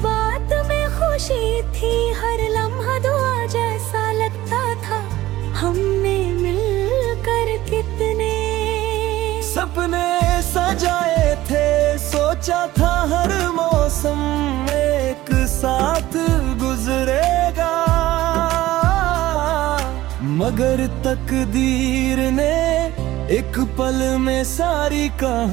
में खुशी थी, हर लम्हा दुआ जैसा लगता था। हमने मिलकर कितने सपने सजाए थे, सोचा था हर मौसम एक साथ गुजरेगा, मगर तकदीर ने एक पल में सारी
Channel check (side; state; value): left; quieter; 16.1 dB